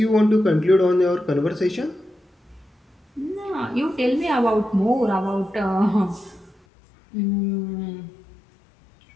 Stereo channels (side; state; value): right; drops out; at 6.6 s